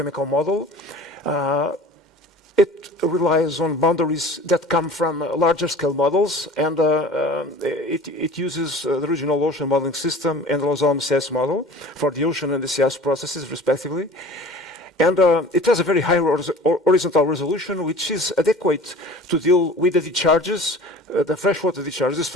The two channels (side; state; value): both; normal; correlation 0.42